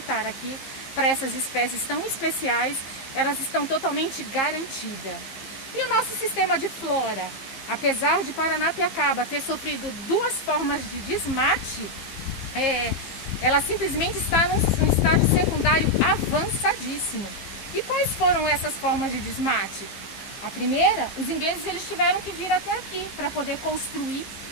aqui, para essas espécies tão especiais, elas estão totalmente garantidas. E o nosso sistema de flora, apesar de Paranapiacaba ter sofrido duas formas de desmate, ela simplesmente está num estágio secundário avançadíssimo. E quais foram essas formas de desmate? A primeira, os ingleses eles tiveram que vir até aqui para poder construir,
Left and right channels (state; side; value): late; right; 15 ms